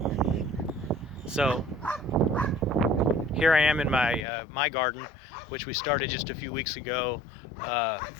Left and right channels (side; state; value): right; drops out; at 4.2 s